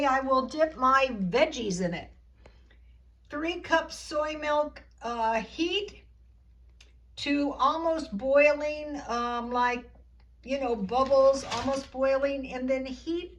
I will dip my veggies in it. 3 cups soy milk, heat to almost boiling, like, you know, bubbles, almost boiling, and then heat,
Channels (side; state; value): both; identical; correlation 1.00